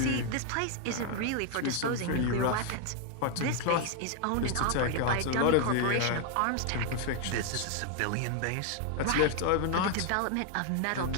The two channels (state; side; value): different; both; correlation 0.01